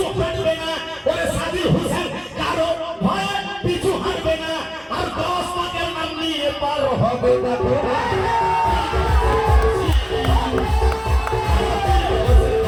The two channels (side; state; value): both; identical; correlation 1.00